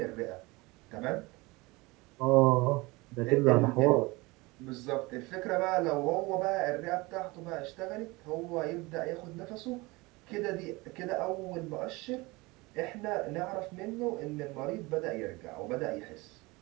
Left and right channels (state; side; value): quieter; left; 23.4 dB